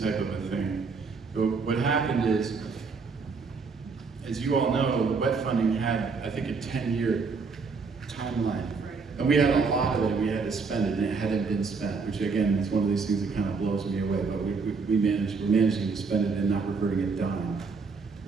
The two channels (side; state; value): left; quieter; 4.7 dB